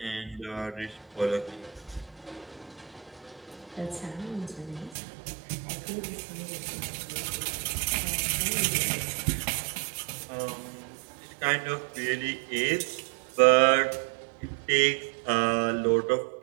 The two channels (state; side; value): drops out; left; at 5.0 s